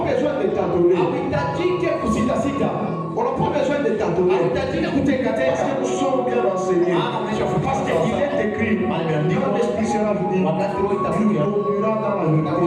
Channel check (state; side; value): identical; both; correlation 1.00